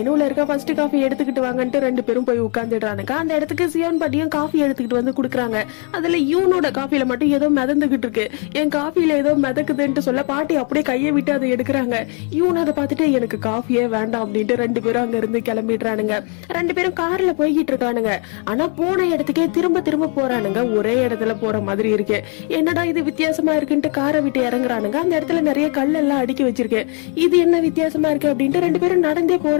இருக்க ஃபர்ஸ்ட் காஃபி எடுத்துக்கிட்டு வாங்கன்ட்டு 2 பேரும் போய் உட்கார்ந்துடுறானுங்க. அந்த இடத்துக்கு சியோன் பாட்டியும் காஃபி எடுத்துக்கிட்டு வந்து குடுக்குறாங்க. அதுல யூனோட காஃபில மட்டும் ஏதோ மிதந்துகிட்டு இருக்கு. என் காஃபில ஏதோ மிதக்குதுன்னு சொல்ல பாட்டி அப்படியே கையை விட்டு அதை எடுக்கிறாங்க. யூன் அதை பார்த்துட்டு, எனக்கு காஃபியே வேண்டாம் அப்படின்ட்டு 2 பேரும் அங்க இருந்து கிளம்பிடுறானுங்க. 2 பேரும் கார்ல போய்கிட்டு இருக்கானுங்க. ஆனா போன இடத்துக்கே திரும்ப திரும்ப போறானுங்க. ஒரே இடத்துல போற மாதிரி இருக்கு. என்னடா இது வித்தியாசமா இருக்குன்ட்டு காரை விட்டு இறங்குறானுங்க. அந்த இடத்துல நிறைய கல் எல்லாம் அடுக்கி வச்சிருக்கு. இது என்ன வித்தியாசமா இருக்கு அப்படின்ட்டு 2 பேரும் நடந்தே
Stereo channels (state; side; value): quieter; right; 37.1 dB